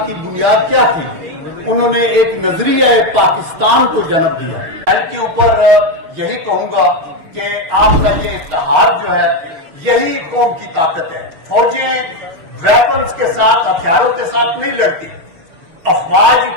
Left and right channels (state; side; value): late; left; 6.3 ms